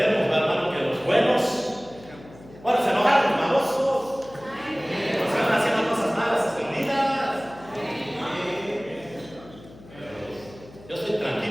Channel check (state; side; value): noise; left; hum, 21 dB below the sound